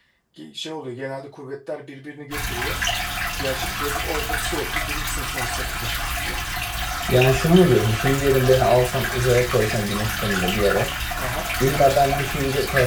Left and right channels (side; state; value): both; identical; correlation 1.00